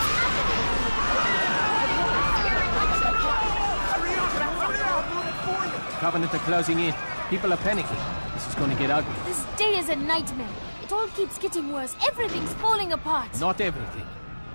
Hurry up! I'll do it for you! Covenant are closing in. People are panicking. This is going to get ugly. This day is a nightmare. It all keeps getting worse. Everything's falling apart. Not everything.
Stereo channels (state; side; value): inverted; both; correlation -1.00